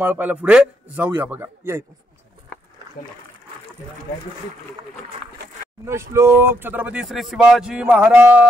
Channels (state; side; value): normal; both; correlation 0.76